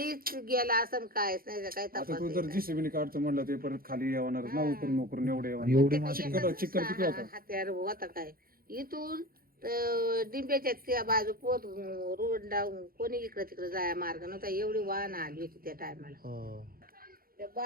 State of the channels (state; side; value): late; left; 0.42 ms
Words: गेला असं काहीच नाही काय आता तपास तू जर जीसीबी काढतो म्हणलं ते परत खाली येणार ना उकरून उकरून एवढे एवढी चिकन किती होता हत्यार होता काय इथून डिंब्याच्या त्या बाजू पोत रोड डाऊन कोणी इकडे तिकडे जाया मार्ग नव्हता एवढी वाहन आली होती त्या टायमाला हा. त्या